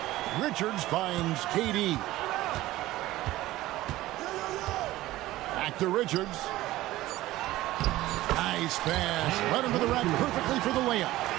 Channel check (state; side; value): quieter; left; 16.6 dB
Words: Richards finds KD. Back to Richards. Nice pass. Right into the rack perfectly for the layup.